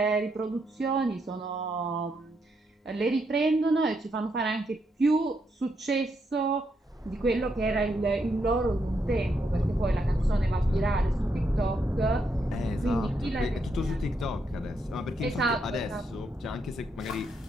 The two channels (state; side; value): normal; both; correlation 0.79